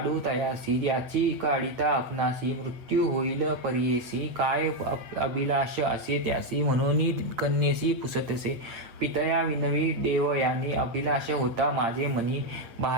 तयासी याची काढिता आपणासी मृत्यू होईल परियेसी काय अभिलाष असे त्यासी म्हणून कन्येसी पुसतसे पितया विनवी देवयानी अभिलाष होता माझे मनी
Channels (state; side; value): late; left; 8.7 ms